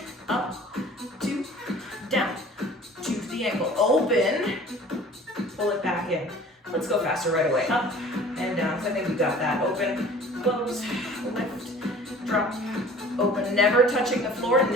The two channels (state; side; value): normal; both; correlation 0.47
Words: Up, 2, down, choose the ankle. Open, pull it back in. Let's go faster right away. Up and down, so I think we got that. Open, close, lift, drop, open. Never touching the floor,